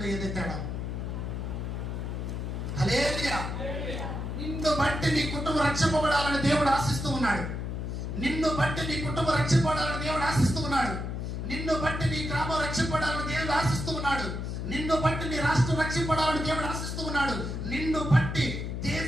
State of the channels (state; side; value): noise; left; hum, 4 dB below the sound